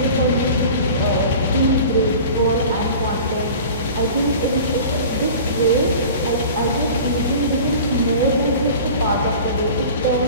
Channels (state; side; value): inverted; both; correlation -0.40